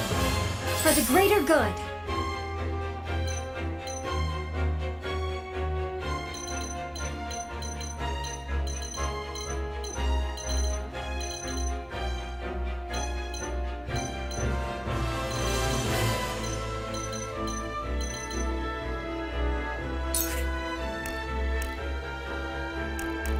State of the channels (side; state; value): both; identical; correlation 1.00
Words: For the greater good.